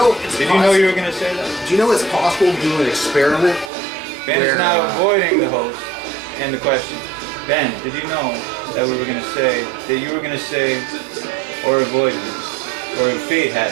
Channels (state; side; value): drops out; left; at 3.7 s